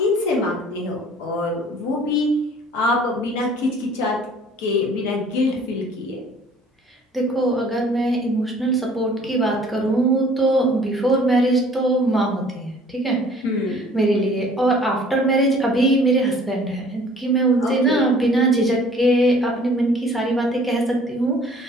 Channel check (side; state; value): both; normal; correlation 0.53